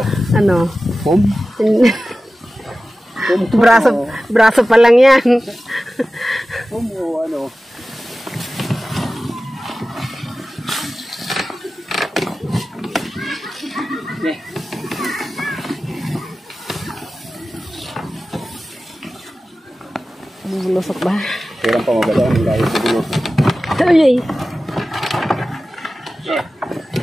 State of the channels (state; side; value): normal; both; correlation 0.95